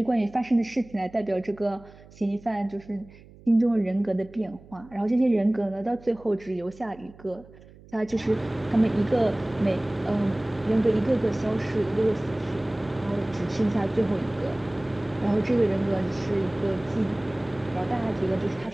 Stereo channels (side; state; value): right; noise; hum, 22 dB below the sound